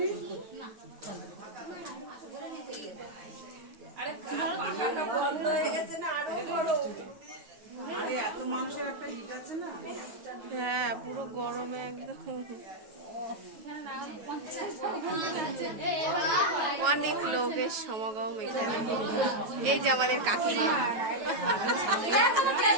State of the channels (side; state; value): left; late; 9.2 ms